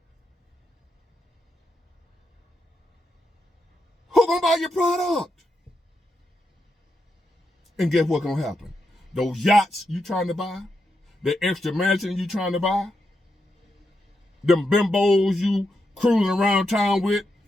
Who gonna buy your product? And guess what's gonna happen? Those yachts you trying to buy, the extra mansion you trying to buy, them bimbos you cruising around town with,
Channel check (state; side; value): normal; both; correlation 0.84